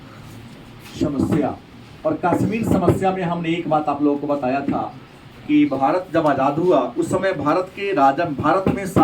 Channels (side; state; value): both; identical; correlation 1.00